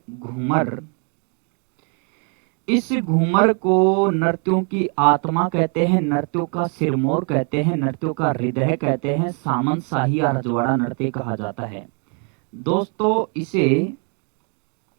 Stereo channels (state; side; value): quieter; left; 39.7 dB